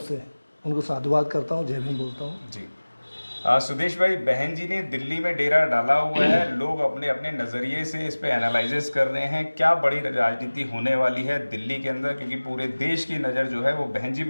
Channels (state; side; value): inverted; both; correlation -1.00